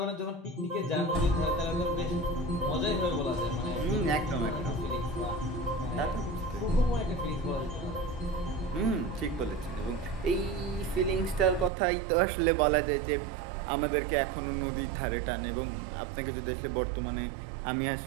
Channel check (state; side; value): drops out; left; at 11.7 s